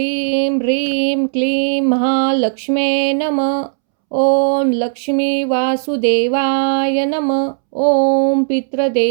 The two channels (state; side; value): silent; left; 69 dB below the other